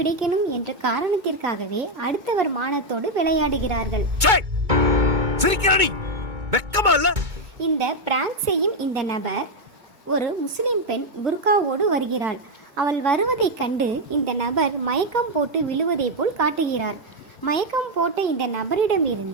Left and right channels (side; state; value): left; late; 2.2 ms